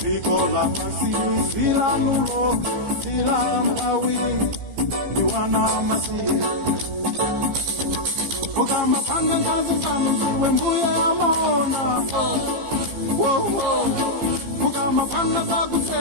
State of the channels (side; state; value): left; late; 15 ms